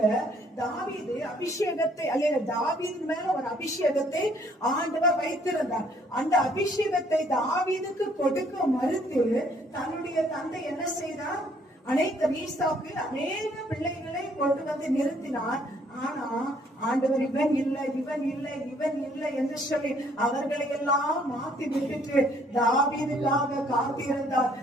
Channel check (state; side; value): normal; both; correlation 0.64